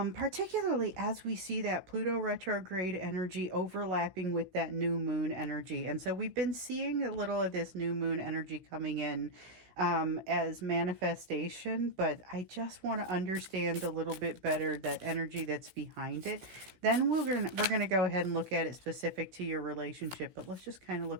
particularly as we see that Pluto retrograde energy overlapping with that new moon energy. And so we've been seeing a little of this new moon energy coming in as manifestation, but I just want to understand a little bit better that energy that's behind it. Then we're gonna go ahead and look at it specific to your relationship, but let's just kind of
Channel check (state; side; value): late; left; 16 ms